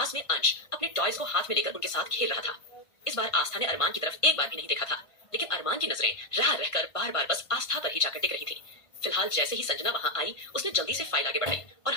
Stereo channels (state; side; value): late; right; 1.5 ms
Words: में अंश अपने टॉयज को हाथ में लेकर उनके साथ खेल रहा था। इस बार आस्था ने अरमान की तरफ एक बार भी नहीं देखा था, लेकिन अरमान की नजरें रह रहकर बार बार बस आस्था पर ही जाकर टिक रही थी। फिलहाल जैसे ही संजना वहां आई, उसने जल्दी से फाइल आगे बढ़ाई और